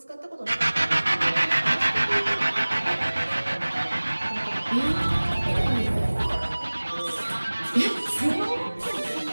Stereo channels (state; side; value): inverted; both; correlation -1.00